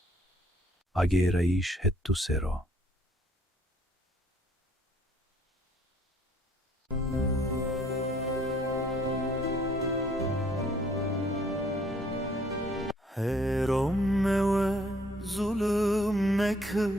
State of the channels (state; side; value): normal; both; correlation 0.62